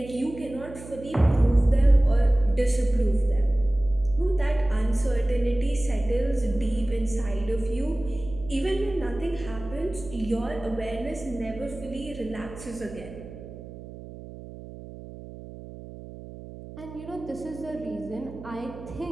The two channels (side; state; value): right; noise; hum, 14 dB below the sound